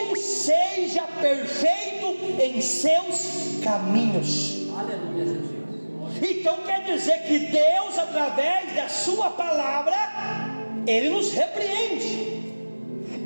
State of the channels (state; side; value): inverted; both; correlation -1.00